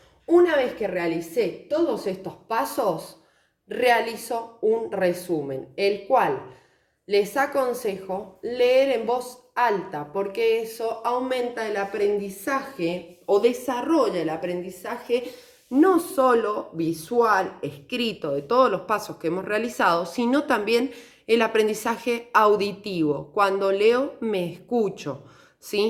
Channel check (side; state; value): both; identical; correlation 1.00